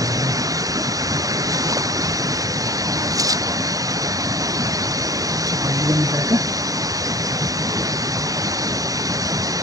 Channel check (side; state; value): left; late; 0.17 ms